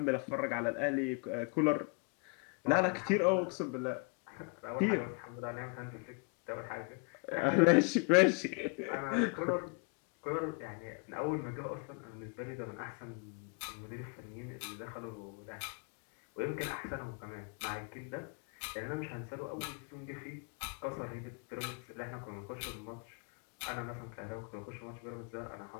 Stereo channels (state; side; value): quieter; right; 34.5 dB